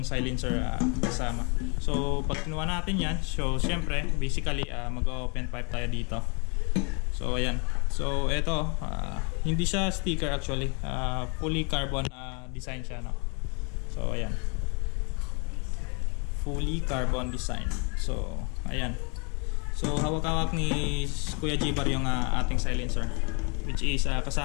silencer kasama. So pag kinuha natin yan, so syempre basically mag-open pipe tayo dito. So ayan. So ito, hindi siya sticker actually, fully carbon design siya, no. So ayan, fully carbon design. So ayan. So hawak-hawak ni Kuya G-Bar yung ating silencer, which is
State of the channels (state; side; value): quieter; right; 34.8 dB